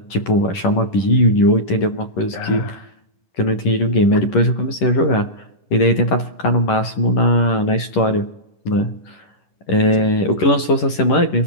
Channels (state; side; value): late; right; 11 ms